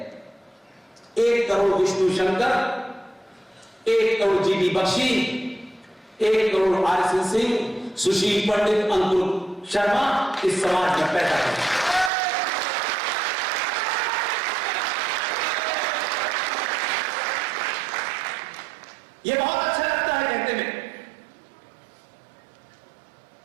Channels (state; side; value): drops out; left; at 12.1 s